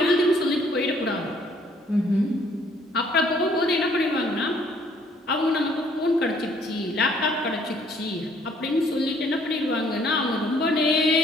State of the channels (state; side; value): normal; both; correlation 0.62